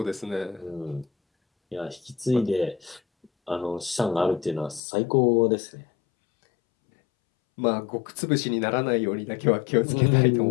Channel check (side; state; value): right; drops out; at 4.8 s